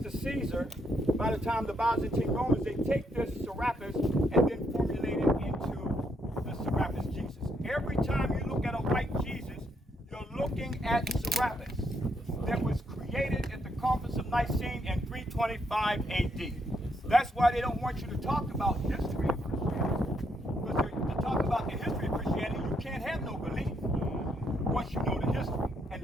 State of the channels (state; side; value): normal; both; correlation 0.75